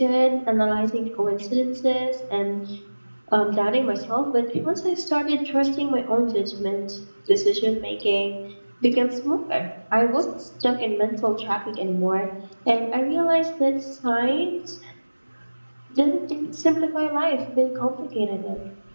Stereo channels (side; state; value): both; inverted; correlation -1.00